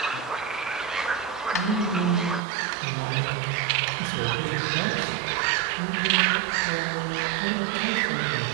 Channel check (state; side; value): drops out; left; at 2.4 s